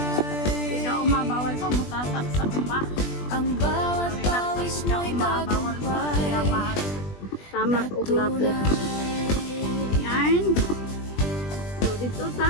Si Kauma bawal pa mutasak sa uma. Ang bawat pawis mo'y tagumpay. Tamak o lapo. Yan. So dito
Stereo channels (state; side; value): late; right; 20 ms